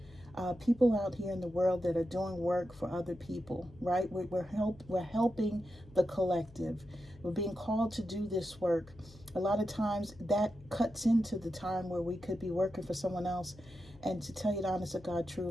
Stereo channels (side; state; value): left; noise; hum, 22 dB below the sound